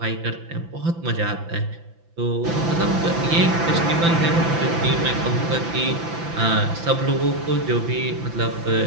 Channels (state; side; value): late; left; 6.0 ms